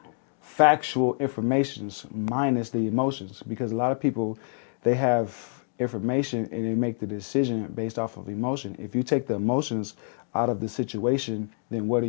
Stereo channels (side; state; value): right; silent; 56 dB below the other